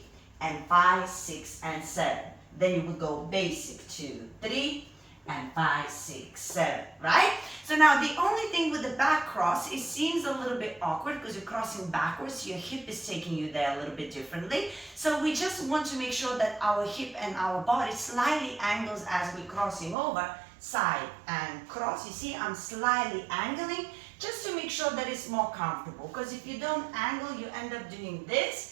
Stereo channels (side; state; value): left; drops out; at 20.0 s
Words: and 5, 6, and 7. Then you would go basic 2, 3, and 5, 6, 7, right? So now the only thing with the back cross, it seems a little bit awkward because you're crossing backwards. Your hip is taking you there a little bit differently. So we just want to make sure that our hip and our body slightly angles as we're crossing over, side and cross. You see, I'm slightly angling just to make sure that it's more comfortable, because if you don't angle, you end up doing